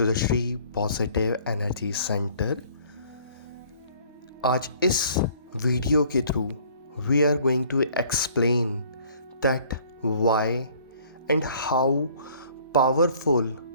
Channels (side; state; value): both; inverted; correlation -0.56